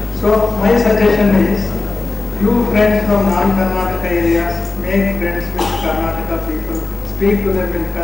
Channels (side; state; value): right; quieter; 3.7 dB